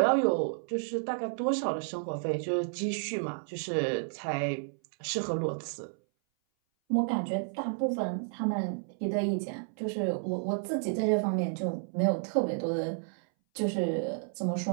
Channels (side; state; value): left; silent; 57 dB below the other